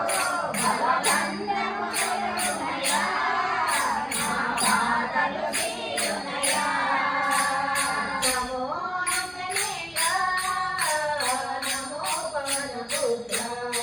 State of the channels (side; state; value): both; identical; correlation 1.00